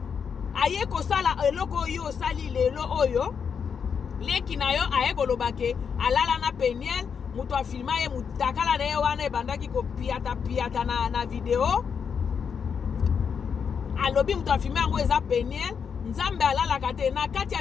aye kosala eloko yo sali lelo oyo leki na yo aye kolobake alala na Peniel mutu afilma ye mutakala na ye wana ebandaki kopiata na video alobi mutu afilma yango eza Peniel nzambe alalaka te na kati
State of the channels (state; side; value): quieter; right; 6.7 dB